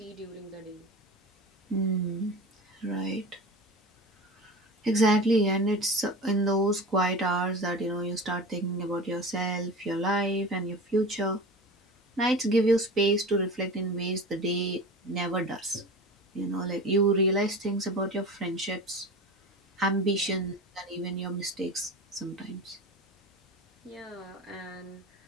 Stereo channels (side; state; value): both; normal; correlation 0.32